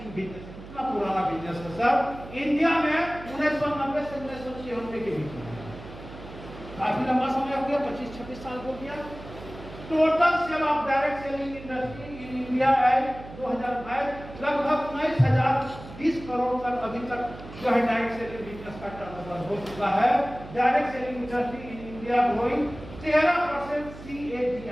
बिजनेस, इतना पुराना बिजनेस है सर। इंडिया में 1990 से 1996 के बीच में काफी लंबा समय हो गया, 25-26 साल हो गया। Total sale of direct selling industry in India at 2022 लगभग 19,020 करोड़ तक अभी तक जो है डायरेक्ट सेलिंग बिजनेस का टर्नओवर हो चुका है। Direct selling industry in India growing 13%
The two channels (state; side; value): noise; right; hum, 15 dB below the sound